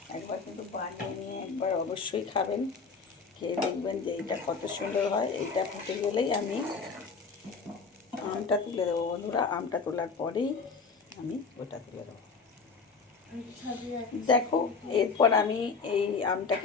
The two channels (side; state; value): right; quieter; 4.9 dB